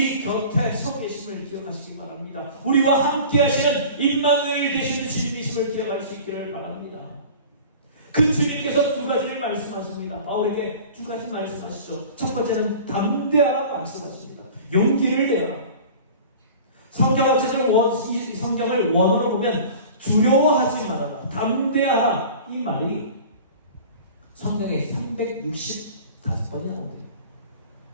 곁에 서 계심을 기억하시기 바랍니다. 우리와 함께 하시는 임마누엘 되시는 주님이심을 기억할 수 있기를 바랍니다. 그 주님께서 두 가지를 말씀하십니다. 바울에게 두 가지 말씀하시죠. 첫 번째는 담대하라 말씀하십니다. 용기를 내라. 성경을 원어로 보면 두려워하지 말아라, 담대하라, 이 말이 성경에 365번이 나옵니다.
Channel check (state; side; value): inverted; both; correlation -0.41